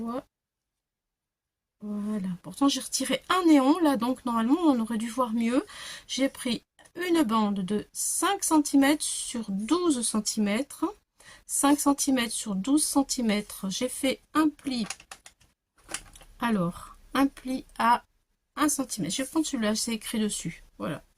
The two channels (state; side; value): identical; both; correlation 1.00